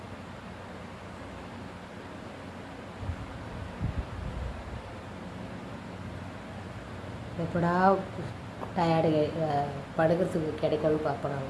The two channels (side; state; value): both; identical; correlation 1.00